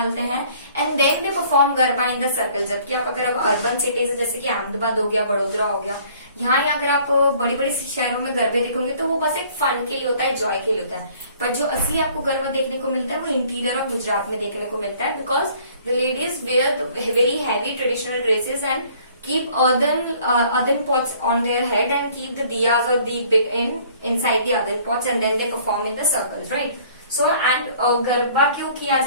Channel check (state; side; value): inverted; both; correlation -0.56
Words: हैं and then they perform garba in the circle. जबकि आप अगर अर्बन सिटीज जैसे कि अहमदाबाद हो गया, बड़ोदरा हो गया, यहाँ अगर आप बड़ी बड़ी शहरों में गरबे देखोगे तो वो बस एक फन के लिए होता है, जॉय के लिए होता है. पर जो असली आपको गरबा देखने को मिलता है वो इंटीरियर ऑफ गुजरात में देखने को मिलता है, because the ladies wear very heavy traditional dresses and keep earthen pots on their head and keep the diyas or deep inside the earthen pots and then they perform in the circles, right. So and garba क्यों किया